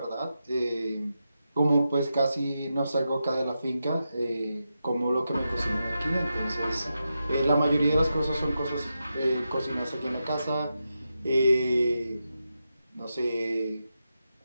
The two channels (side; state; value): both; inverted; correlation -0.88